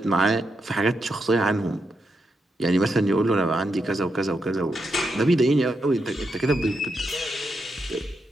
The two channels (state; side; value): normal; both; correlation 0.83